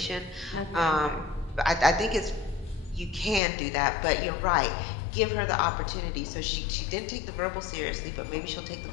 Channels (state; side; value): drops out; right; at 3.4 s